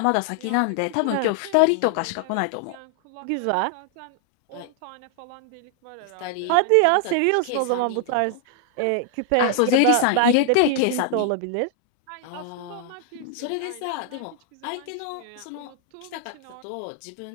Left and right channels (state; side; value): different; both; correlation 0.00